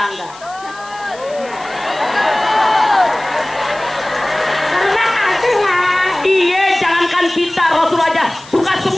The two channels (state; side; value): noise; left; hiss, 21 dB below the sound